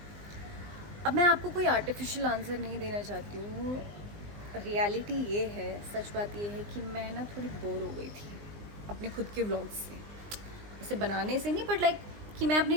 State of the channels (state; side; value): late; left; 19 ms